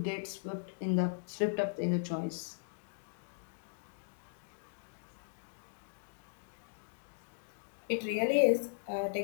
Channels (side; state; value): right; silent; digital silence